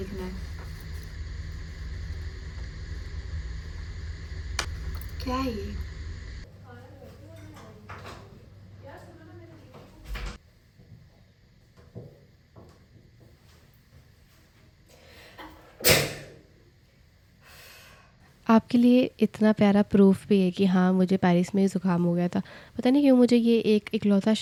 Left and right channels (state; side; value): identical; both; correlation 1.00